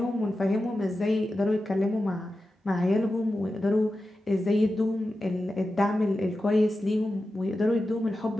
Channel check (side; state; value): both; normal; correlation 0.92